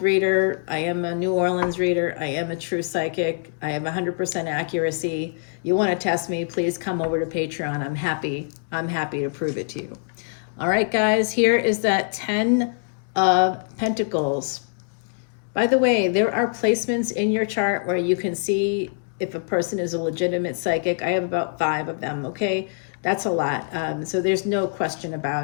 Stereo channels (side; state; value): right; silent; digital silence